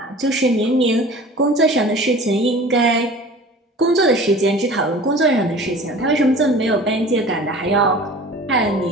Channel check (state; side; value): normal; both; correlation 0.42